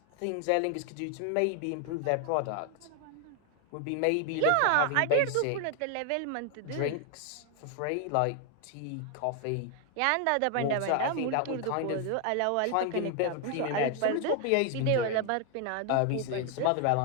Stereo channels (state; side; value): different; both; correlation 0.01